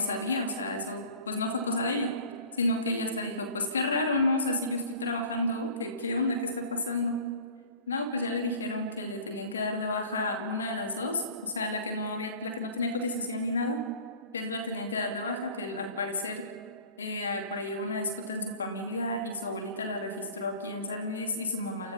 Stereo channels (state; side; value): inverted; both; correlation -0.45